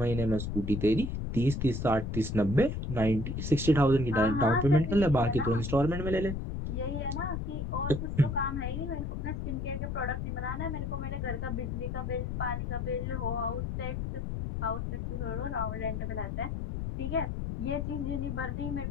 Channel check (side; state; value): left; noise; rumble, 3 dB below the sound